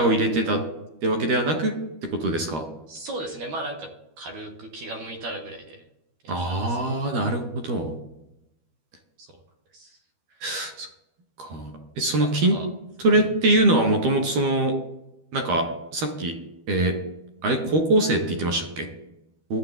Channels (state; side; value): late; left; 13 ms